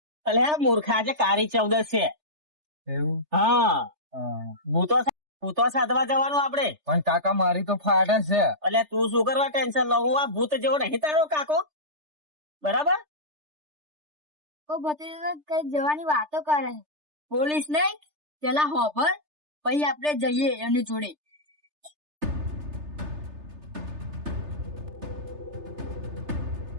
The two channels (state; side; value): late; left; 3.3 ms